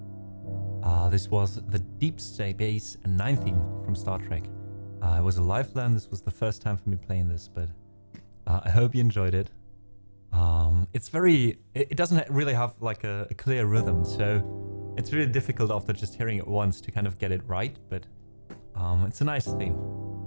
This was the Deep Space Nine theme from Star Trek. It was a live learn. This was the first time for me playing this, but I hope you enjoyed it. It doesn't really have like a clear rhythm, so it's really difficult after just hearing it once to kind of get it right, but it's a nice theme.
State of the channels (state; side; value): inverted; both; correlation -1.00